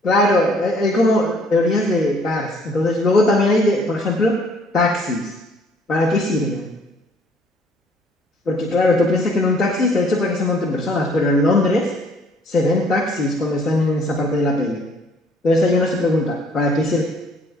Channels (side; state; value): both; normal; correlation 0.60